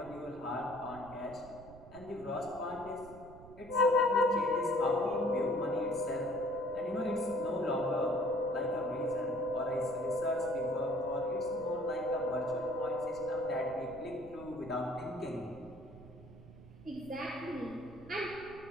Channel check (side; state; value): right; noise; rumble, 18 dB below the sound